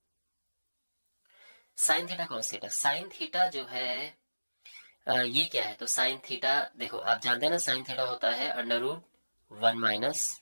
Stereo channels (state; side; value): inverted; both; correlation -1.00